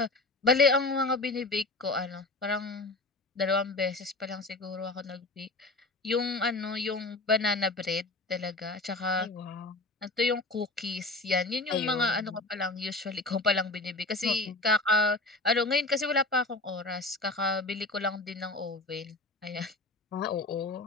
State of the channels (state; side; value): quieter; right; 3.0 dB